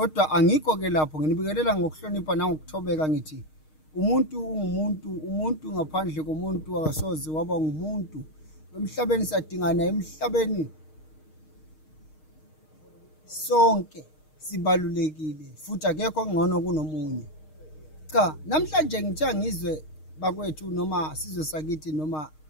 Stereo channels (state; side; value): late; right; 6.5 ms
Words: angikho ke lapho, nginibikelela ngokuhlonipha nangokuthobeka ngithi umuntu ungumuntu, umuntu ngaphandle komuntu akasoze waba ngumuntu. Emhlabeni sadingana, emhlabeni sonke sibalulekile futhi akekho ngcono kunomunye. Cha, namhlanje ngithe ngizwe bakwethu noma sizwe sakithi noma